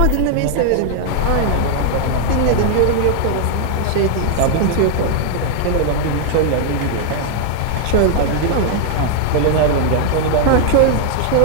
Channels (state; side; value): different; both; correlation -0.01